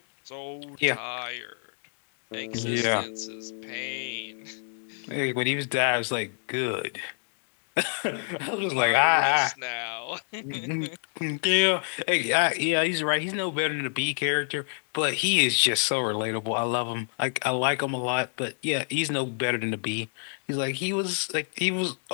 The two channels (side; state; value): right; silent; 58 dB below the other